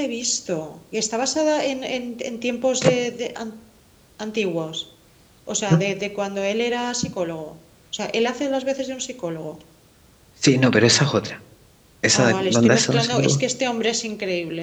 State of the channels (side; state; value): both; identical; correlation 1.00